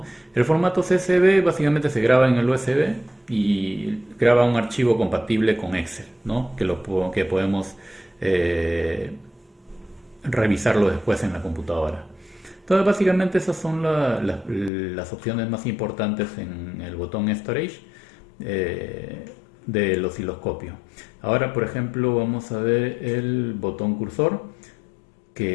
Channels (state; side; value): drops out; right; at 14.7 s